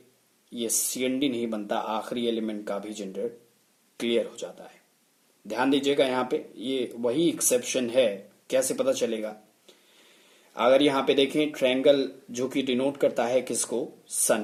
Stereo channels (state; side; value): identical; both; correlation 1.00